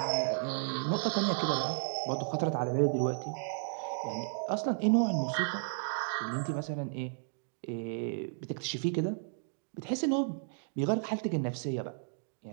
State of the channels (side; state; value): left; silent; digital silence